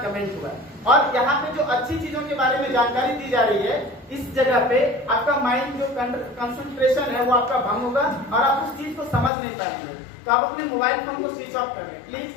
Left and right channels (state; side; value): drops out; right; at 9.3 s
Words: हुआ है। और यहाँ पे जो अच्छी चीजों के बारे में जानकारी दी जा रही है, इस जगह पे आपका माइंड जो कंसंट्रेशन है वो आपका भंग होगा और आप उस चीज को समझ नहीं पाएंगे। तो आप अपने मोबाइल फोन को स्विच ऑफ कर दें,